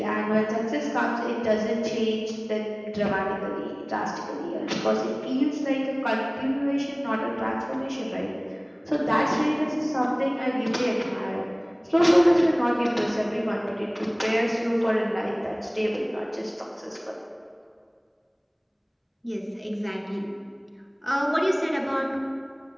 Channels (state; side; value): identical; both; correlation 1.00